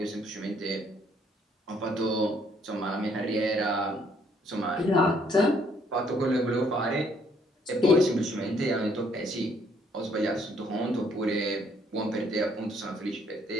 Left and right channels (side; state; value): both; normal; correlation 0.67